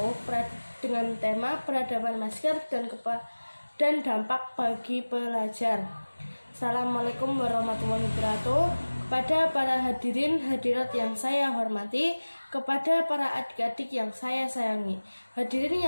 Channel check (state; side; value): inverted; both; correlation -1.00